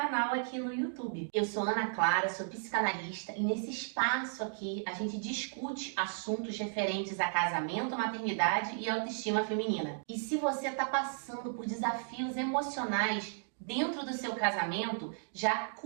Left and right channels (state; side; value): silent; left; digital silence